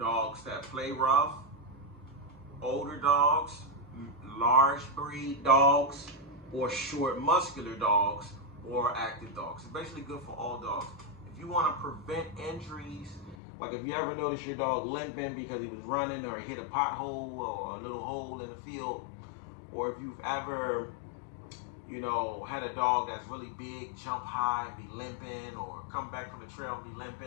that play rough, older dogs, large breed dogs, or short muscular dogs, or active dogs. It's basically good for all dogs. If you want to prevent injuries, like if you ever notice your dog limping because he was running or hit a pothole or a little hole in the field, or if you've ever, had a dog that's really big, jump high and be limping, or come back from the trail and be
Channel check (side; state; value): right; drops out; at 13.4 s